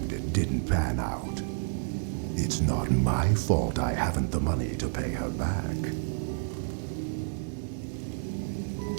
it didn't pan out. It's not my fault I haven't the money to pay her back.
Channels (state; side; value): silent; left; 58 dB below the other